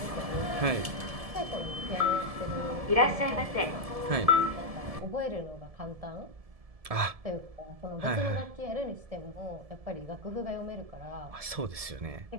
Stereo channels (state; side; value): late; left; 1.7 ms